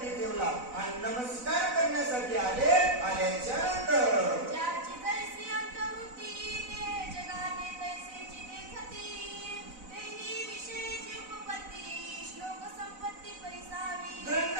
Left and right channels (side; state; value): left; late; 4.0 ms